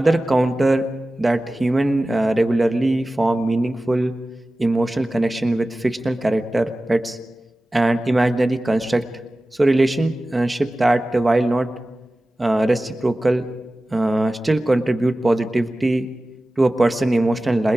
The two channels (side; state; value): both; normal; correlation 0.96